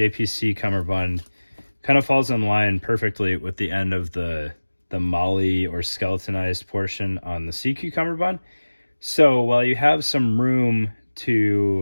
cummerbund kind of falls in line perfectly with the end of the molly or skeletonized portion on the SEACU cummerbund. So while you have some room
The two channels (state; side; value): inverted; both; correlation -1.00